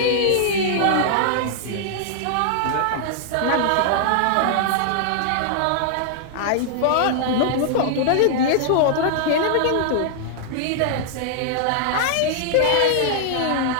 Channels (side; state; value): both; different; correlation -0.01